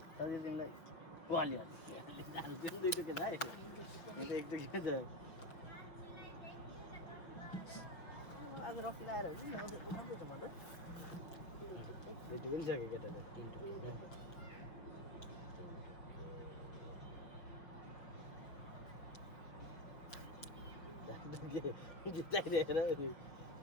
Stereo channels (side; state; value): right; late; 5.8 ms